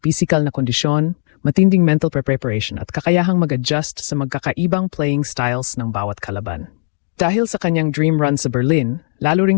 physical na kondisyon, matinding mental preparation at kakayahang mag-adjust sa magkakaibang playing styles ng bawat kalaban. Dahil sa kanyang dream run sa Berlin, lalo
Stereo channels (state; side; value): silent; right; digital silence